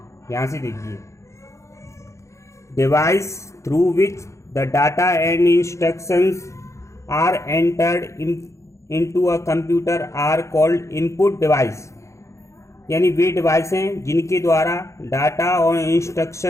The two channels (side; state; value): right; late; 0.14 ms